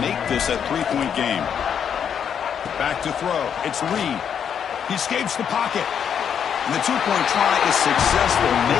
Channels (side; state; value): right; quieter; 8.0 dB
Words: this a 3-point game. Back to throw. It's Reed. He escapes the pocket. And the 2-point try is successful,